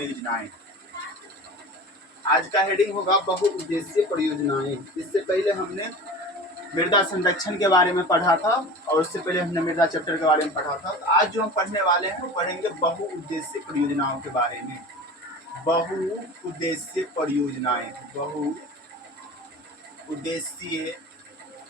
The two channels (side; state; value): both; normal; correlation 0.35